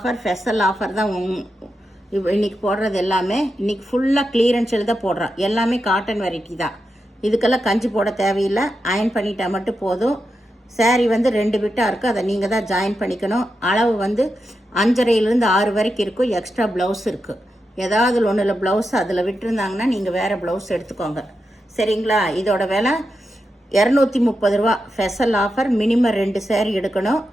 ஸ்பெஷல் ஆஃபர் தான். இன்றைக்கி போடுறது எல்லாமே இன்றைக்கி ஃபுல்லாக கிளியரன்ஸில் தான் போடுறோம். எல்லாமே காட்டன் வெரைட்டி தான். இதுக்கெல்லாம் கஞ்சி போட தேவையில்லை, அயன் பண்ணிட்டா மட்டும் போதும். சாரீ வந்து 2 பிட்டாக இருக்குது, அதை நீங்கள் தான் ஜாயின் பண்ணிக்கணும். அளவு வந்து 5.5லேருந்து 6 வரைக்கும் இருக்கும். எக்ஸ்ட்ரா ப்ளவுஸ் இருக்குது. ஏதாவது ஒன்றில் ப்ளவுஸ் அதில் விட்டுருந்தாங்கன்னா நீங்கள் வேறு ப்ளவுஸ் எடுத்துக்கோங்க, சரிங்களா? இதோட விலை 230 ரூபா. Special offer. மினிமம் 2 சாரீ எடுக்கணும்.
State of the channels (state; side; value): normal; both; correlation 0.88